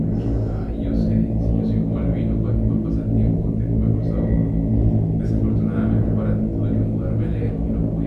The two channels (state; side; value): identical; both; correlation 1.00